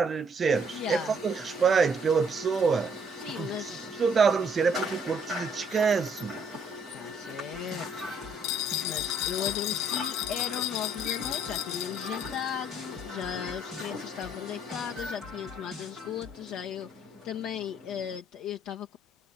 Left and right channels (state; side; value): normal; both; correlation 0.65